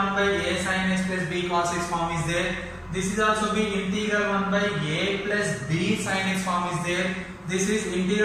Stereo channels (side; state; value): both; identical; correlation 1.00